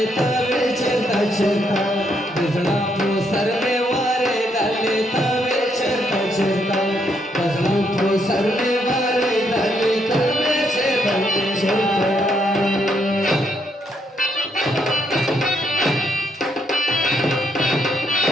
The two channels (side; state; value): both; normal; correlation 0.74